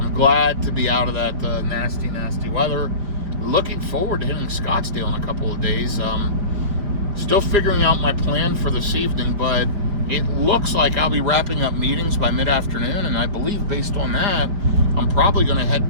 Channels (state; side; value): late; left; 5.0 ms